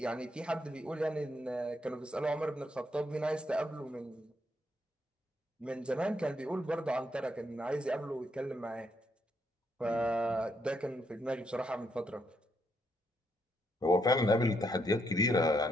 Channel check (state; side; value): normal; both; correlation 0.76